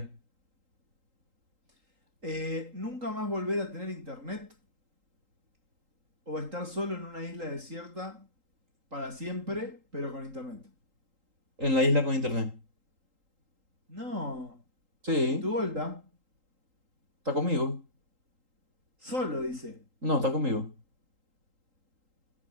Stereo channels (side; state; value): left; late; 3.8 ms